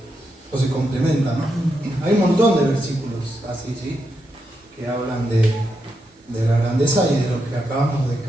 O se complementa, ¿no? Hay un montón de versículos así, ¿sí? Que hablan de la grandeza y de lo que acabamos de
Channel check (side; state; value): both; normal; correlation 0.84